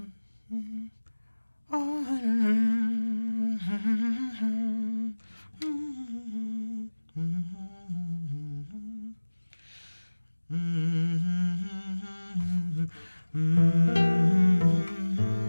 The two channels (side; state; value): both; inverted; correlation -1.00